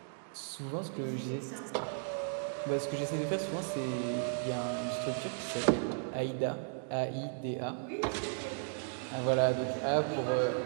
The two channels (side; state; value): left; silent; digital silence